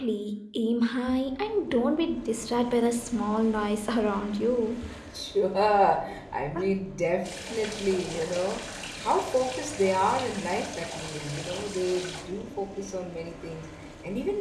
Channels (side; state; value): both; identical; correlation 1.00